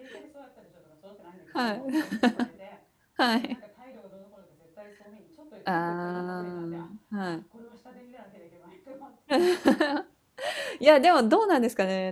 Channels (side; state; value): both; identical; correlation 1.00